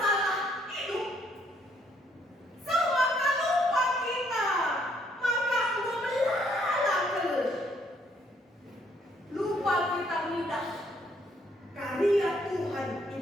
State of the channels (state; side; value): normal; both; correlation 0.68